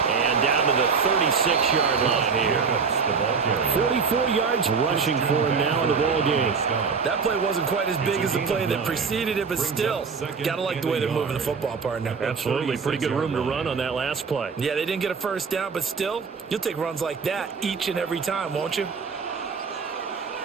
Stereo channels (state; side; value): quieter; left; 5.4 dB